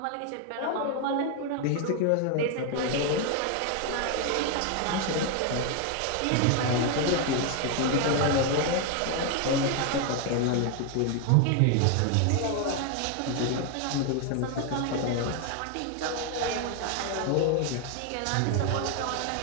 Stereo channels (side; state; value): both; different; correlation 0.01